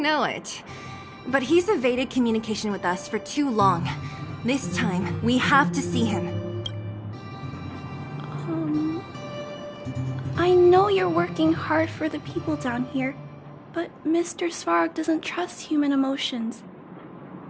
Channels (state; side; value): identical; both; correlation 1.00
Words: it? But he's evaded communication with us for too long. This time, we have to see him. I know you're working hard for the people down here, but Mr. Svarog doesn't trust human emotions.